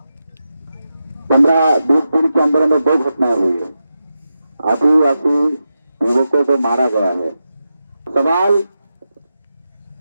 15-20 दिन के अंदर में 2 घटनाएं हुई है। आदिवासी युवकों को मारा गया है। सवाल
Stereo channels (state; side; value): inverted; both; correlation -0.89